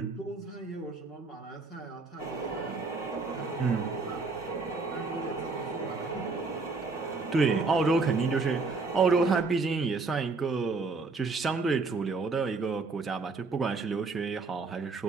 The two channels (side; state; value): left; quieter; 4.0 dB